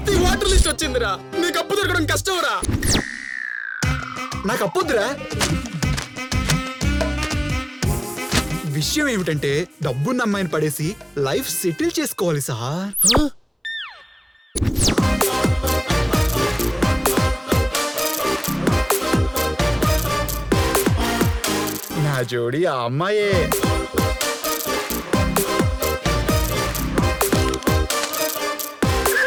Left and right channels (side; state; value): both; identical; correlation 1.00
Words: వాటర్ లిస్ట్ వచ్చిందిరా. నీకు అప్పు దొరకడం కష్టంరా. నాకు అప్పొద్దురా. విషయం ఏమిటంటే డబ్బున్న అమ్మాయిని పడేసి లైఫ్ సెటిల్ చేసుకోవాలి సార్. నా జోడి ఆ అమ్మాయే.